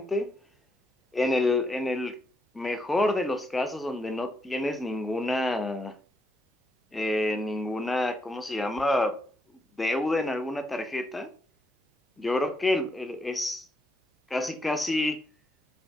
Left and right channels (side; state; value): both; normal; correlation 0.80